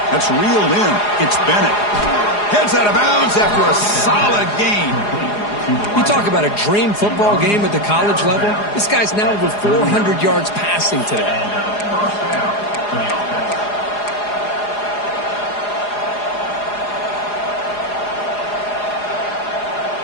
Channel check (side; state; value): right; late; 4.8 ms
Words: That's reeled in. It's Bennett. Heads out of bounds after a solid gain. You talk about a dream football game at the college level. This guy's now over 400 yards passing today. First down for the offense.